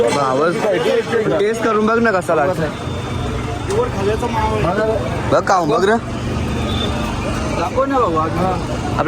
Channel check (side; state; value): both; identical; correlation 1.00